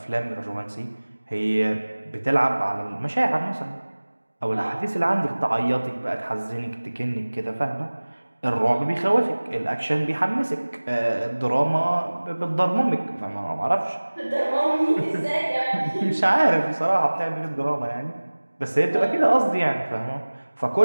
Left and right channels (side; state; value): both; inverted; correlation -1.00